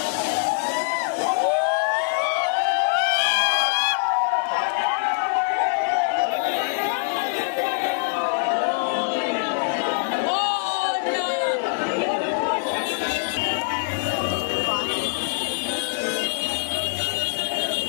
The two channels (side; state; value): right; silent; digital silence